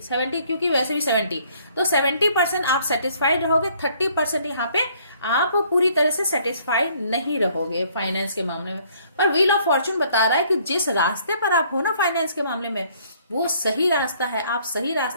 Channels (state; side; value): inverted; both; correlation -0.62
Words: 70 क्योंकि वैसे भी 70, तो 70% आप सेटिस्फाइड रहोगे, 30% यहाँ पे आप पूरी तरह से सेटिस्फाइड नहीं रहोगे फाइनेंस के मामले में। पर व्हील ऑफ फॉर्च्यून बता रहा है कि जिस रास्ते पर आप हो ना फाइनेंस के मामले में, वो सही रास्ता है, आप सही